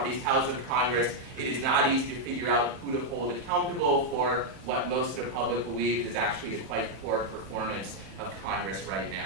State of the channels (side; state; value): left; late; 31 ms